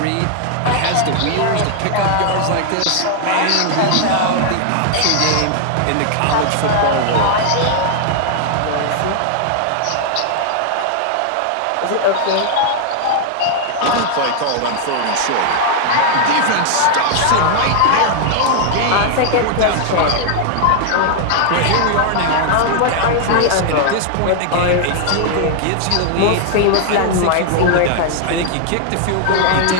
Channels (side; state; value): both; different; correlation 0.00